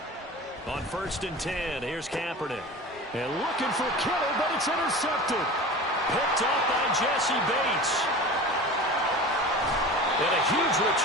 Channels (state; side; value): normal; both; correlation 0.35